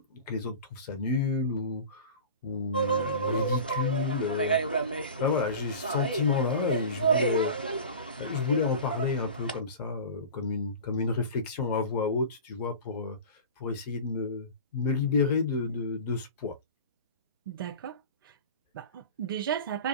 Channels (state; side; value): inverted; both; correlation -0.35